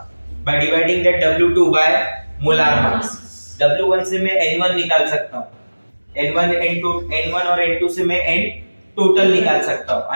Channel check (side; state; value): both; inverted; correlation -1.00